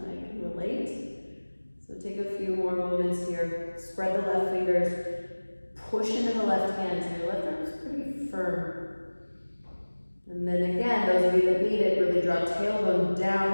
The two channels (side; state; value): both; inverted; correlation -1.00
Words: I can relate. So take a few more moments here. Spread the left fingers, push into the left hand, so your left arm is pretty firm. And then again, those of you that need it, really draw tailbone